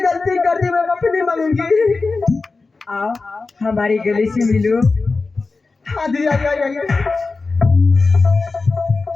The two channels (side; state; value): right; quieter; 3.9 dB